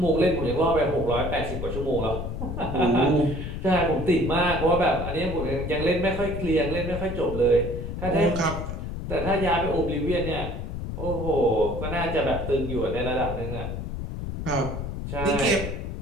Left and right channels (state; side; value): noise; left; rumble, 5 dB below the sound